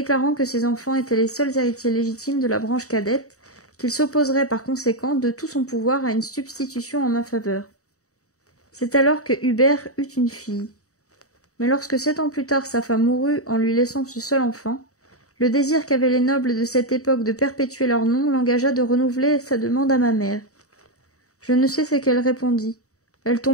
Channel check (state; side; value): late; right; 0.65 ms